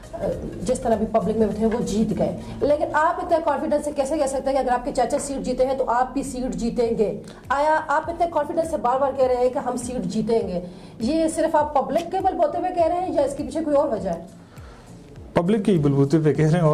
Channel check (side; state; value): both; identical; correlation 1.00